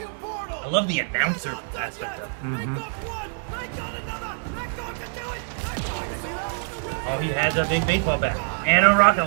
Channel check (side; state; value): left; silent; digital silence